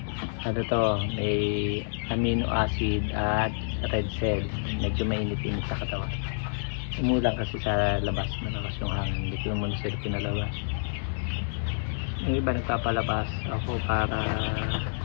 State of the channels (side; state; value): right; silent; digital silence